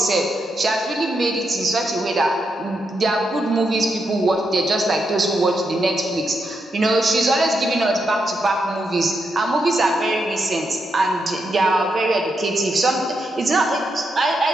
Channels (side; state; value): both; normal; correlation 0.82